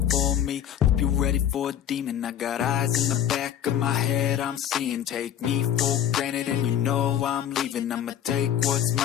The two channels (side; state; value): right; quieter; 10.1 dB